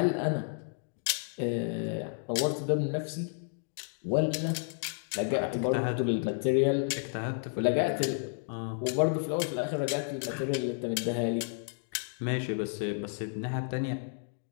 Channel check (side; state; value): right; silent; 57 dB below the other